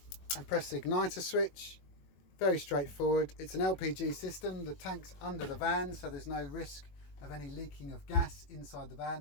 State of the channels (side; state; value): right; late; 21 ms